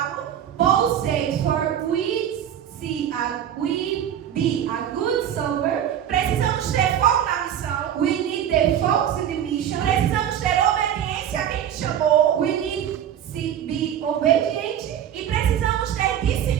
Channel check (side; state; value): left; quieter; 10.0 dB